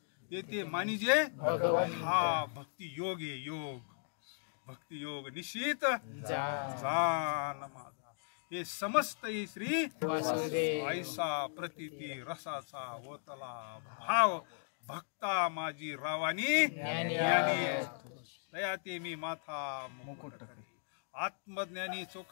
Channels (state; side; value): silent; right; digital silence